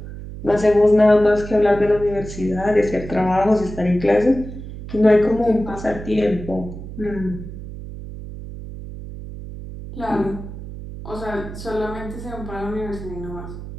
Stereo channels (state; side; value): noise; right; hum, 11 dB below the sound